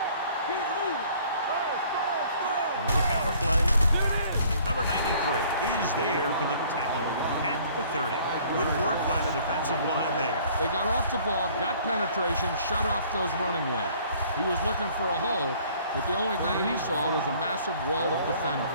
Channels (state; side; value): inverted; both; correlation -0.56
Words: With a counter play. Number 93 is there for the tackle at the 30. Good work by the defensive line there. They got off the ball, got penetration, shut off those running lanes. He was looking for a hole, but the only thing he saw was a massive wall of defenders.